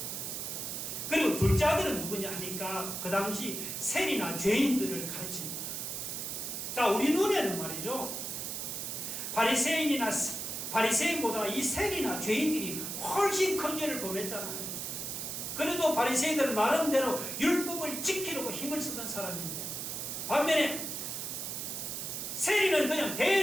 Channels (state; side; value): noise; right; hiss, 4 dB below the sound